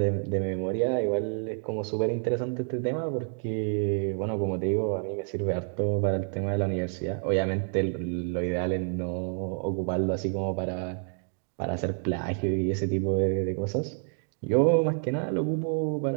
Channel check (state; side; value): silent; left; 59 dB below the other